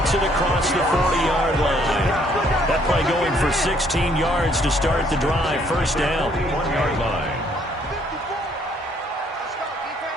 it across the 40-yard line. That play going for 16 yards to start the drive. 1st down. 1-yard line.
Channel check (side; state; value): both; normal; correlation 0.65